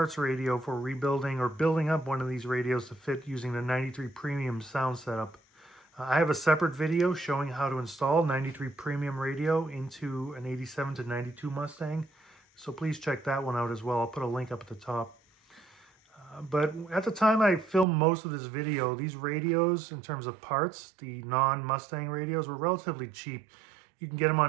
radio for rebuilding or building up one of these radios to fit using the 93 Premium Sound setup. I have a separate video showing how to install 93 Premium radio into an 87 to 92 Mustang. So please check that one out as well. I'll put a link up at the top. But at the time I filmed most of this video, these radios, in terms of parts, the non-Mustang radios, were relatively cheap. You can get them on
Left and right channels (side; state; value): left; drops out; at 17.9 s